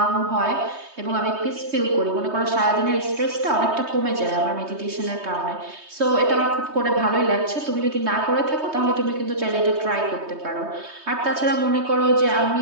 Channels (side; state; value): left; late; 3.2 ms